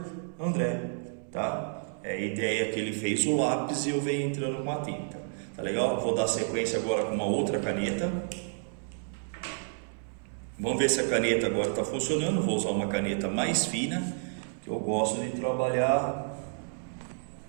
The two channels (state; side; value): silent; left; 58 dB below the other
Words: André. Tá? É a ideia que ele fez o lápis e eu venho entrando com a tinta, tá legal? Vou dar sequência agora com uma outra caneta. Vamos ver se a caneta agora está funcionando. Vou usar uma caneta mais fina, que eu gosto de trabalhar